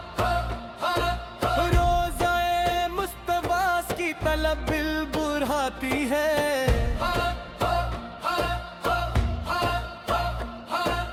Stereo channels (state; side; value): identical; both; correlation 1.00